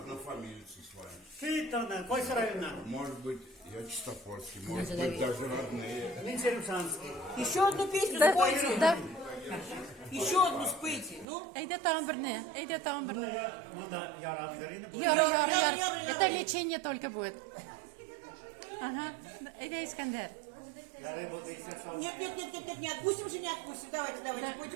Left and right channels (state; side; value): drops out; left; at 11.2 s